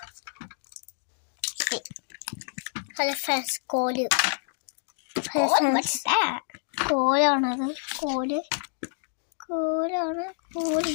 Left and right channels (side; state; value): right; silent; digital silence